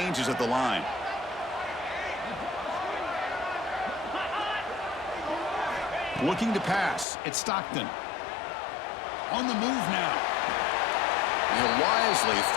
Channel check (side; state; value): right; drops out; at 7.1 s